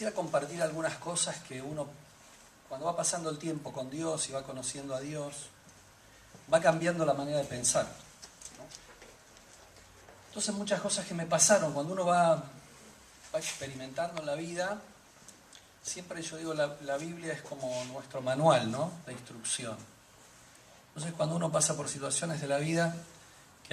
compartir algunas cosas que uno, cuando va pasando el tiempo con Dios y va conociendo a Dios, va cambiando la manera de pensar, ¿no? Entonces muchas cosas que me pasaron, cuando uno va experimentando en la vida, siempre yo digo, la Biblia es como nuestro manual, ¿no?, de instrucción. Entonces cuando uno pasa por situaciones de la vida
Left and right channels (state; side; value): identical; both; correlation 1.00